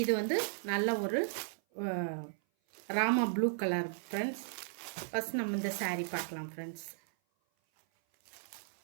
இது வந்து நல்ல ஒரு Rama blue colour friends. First நம்ம இந்த சாரீ பார்க்கலாம் ஃப்ரெண்ட்ஸ்.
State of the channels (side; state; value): left; silent; 54 dB below the other